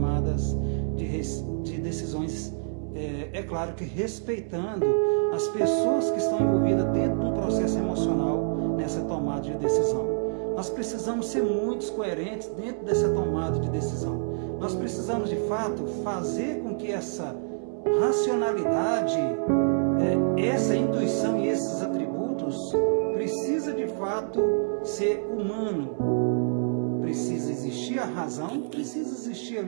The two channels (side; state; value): left; silent; 60 dB below the other